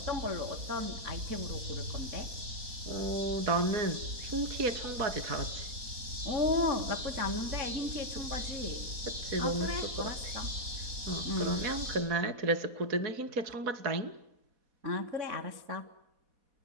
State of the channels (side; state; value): left; late; 4.2 ms